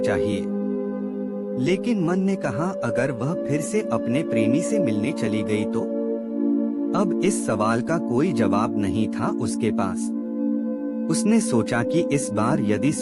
लेकिन मन ने कहा, अगर वह फिर से अपने प्रेमी से मिलने चली गई तो? अब इस सवाल का कोई जवाब नहीं था उसके पास। उसने सोचा कि इस बार यदि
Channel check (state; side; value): identical; both; correlation 1.00